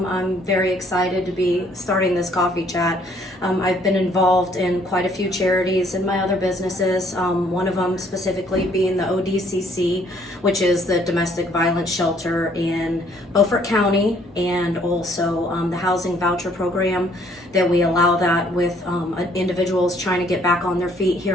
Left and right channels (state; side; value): normal; both; correlation 0.63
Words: very excited to be starting this Coffee Chat. I've been involved in quite a few charities in my other businesses, one of them specifically being the ODCC, which is the domestic violence shelter in Beaufort County, and also the housing voucher program that we allow that with individuals trying to get back on their feet